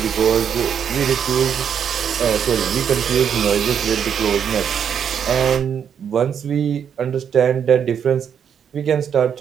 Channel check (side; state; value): left; quieter; 8.0 dB